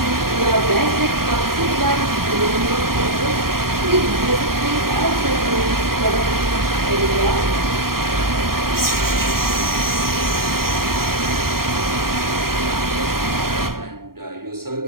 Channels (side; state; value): left; late; 0.93 ms